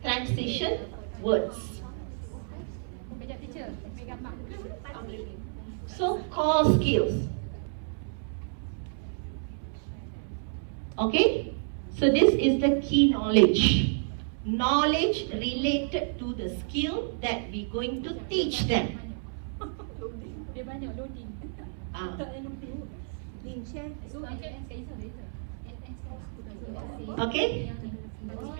transition words. So, core skills. Okay? So, this is the key knowledge. Knowledge related to the skill that we're going to teach them. Okay?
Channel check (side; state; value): left; silent; 58 dB below the other